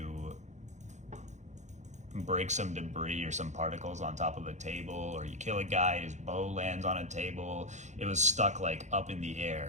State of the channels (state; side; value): late; left; 0.34 ms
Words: break some debris or some particles on top of a table, or you kill a guy, his bow lands on a table, it was stuck like up in the